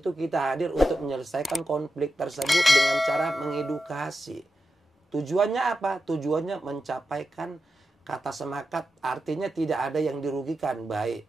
kita hadir untuk menyelesaikan konflik tersebut dengan cara mengedukasi. Tujuannya apa? Tujuannya mencapaikan kata sepakat, artinya tidak ada yang dirugikan, baik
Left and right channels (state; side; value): normal; both; correlation 0.90